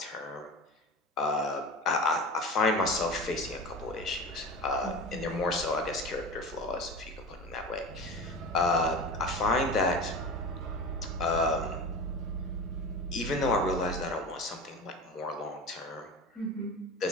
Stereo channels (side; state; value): both; normal; correlation 0.31